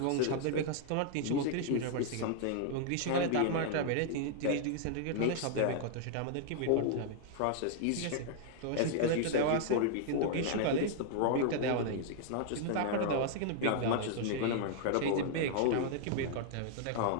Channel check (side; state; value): both; different; correlation -0.01